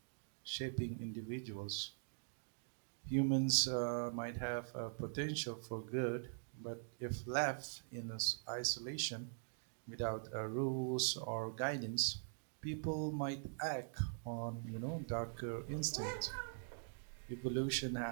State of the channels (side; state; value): left; silent; digital silence